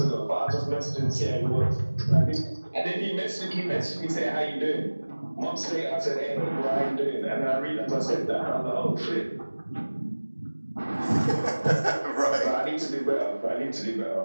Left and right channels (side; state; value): both; inverted; correlation -1.00